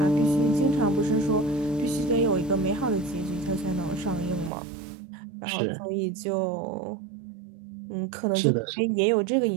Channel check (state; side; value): drops out; left; at 4.5 s